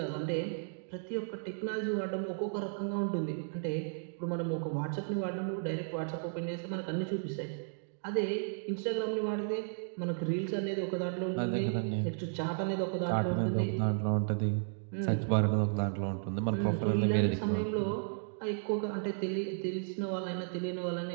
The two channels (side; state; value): left; silent; digital silence